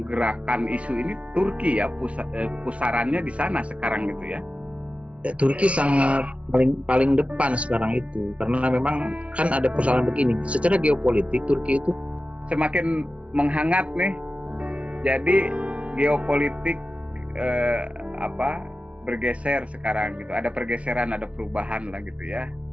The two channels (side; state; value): left; late; 0.062 ms